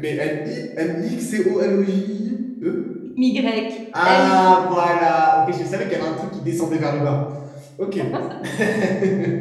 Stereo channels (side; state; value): both; identical; correlation 1.00